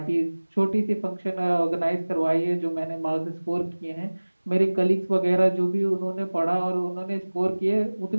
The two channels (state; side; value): inverted; both; correlation -1.00